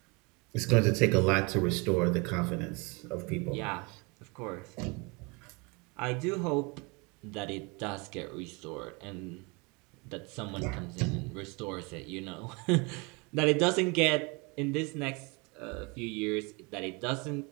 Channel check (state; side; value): quieter; left; 29.0 dB